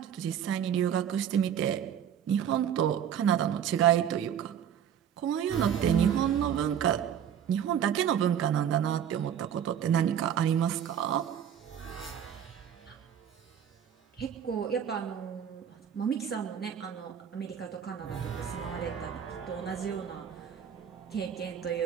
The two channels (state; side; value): quieter; left; 9.0 dB